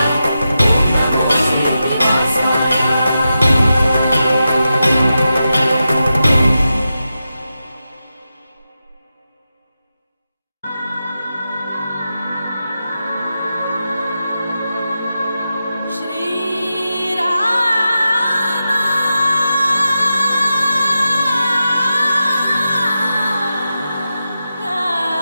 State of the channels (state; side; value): inverted; both; correlation -0.90